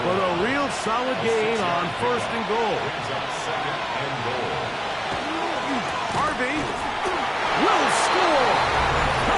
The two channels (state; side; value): identical; both; correlation 1.00